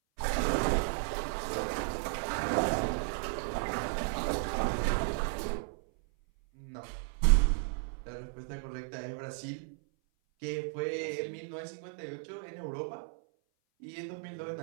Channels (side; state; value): left; silent; 55 dB below the other